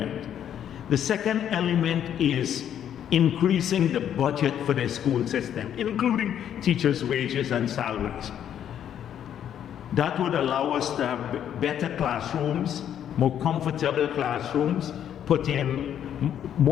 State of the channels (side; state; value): right; quieter; 9.8 dB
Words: The second element is increasing the budget for the school system, including teachers' wages and salaries. That would allow us to have better classrooms, more comfortable classrooms,